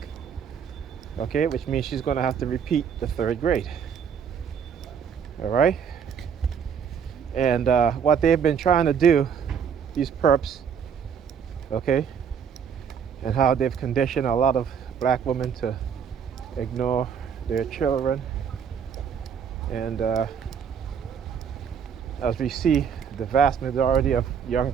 okay, which means she's going to have to repeat the third grade. All right, and what they've been trying to do, these perps, okay, and how they've conditioned a lot of black women to ignore their children, and as we see, the vast majority of young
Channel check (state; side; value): quieter; left; 7.4 dB